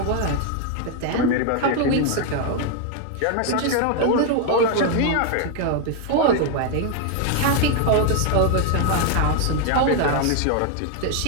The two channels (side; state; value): both; different; correlation 0.00